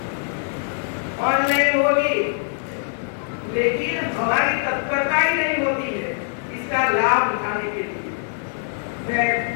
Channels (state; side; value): silent; right; digital silence